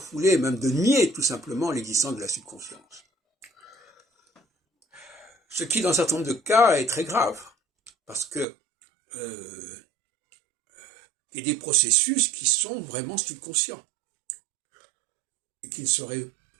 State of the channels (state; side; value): drops out; left; at 8.5 s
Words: même de nier tout simplement l'existence de la subconscience. Ce qui, dans un certain nombre de cas, est très grave, parce que il y a des processus qui sont vraiment subconscients, et qui ne seraient